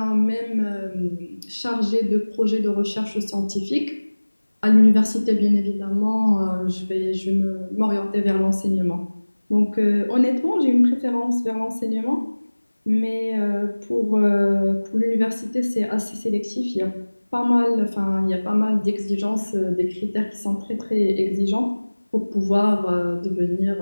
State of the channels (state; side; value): inverted; both; correlation -1.00